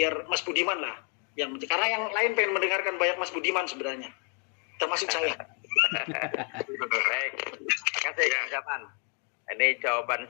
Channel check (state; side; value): quieter; right; 38.8 dB